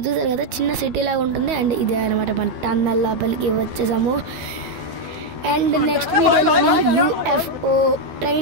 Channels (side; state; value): left; late; 12 ms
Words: చూసారు కదా చిన్న సిటీ లాగా ఉంటుంది. అండ్ ఇదే అనమాట మన టన్నల్ లోపలికి వచ్చేసాము. అండ్ నెక్స్ట్ వీడియోలో యూఎఫ్ఓ